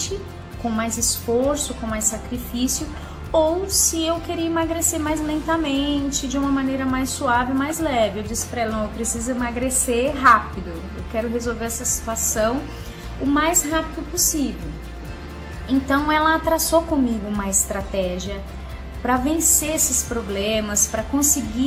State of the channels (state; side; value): identical; both; correlation 1.00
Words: com mais esforço, com mais sacrifício, ou se eu queria emagrecer mais lentamente, de uma maneira mais suave, mais leve. Eu disse para ela, não, eu preciso emagrecer rápido, eu quero resolver essa situação o mais rápido possível. Então ela traçou comigo uma estratégia para vencer esses problemas, para